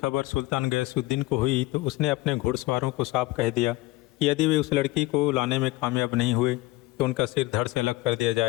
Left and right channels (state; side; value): quieter; right; 19.3 dB